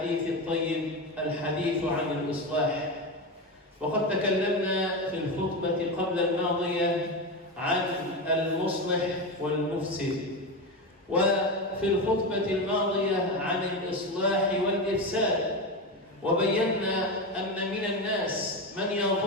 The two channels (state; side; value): normal; both; correlation 0.17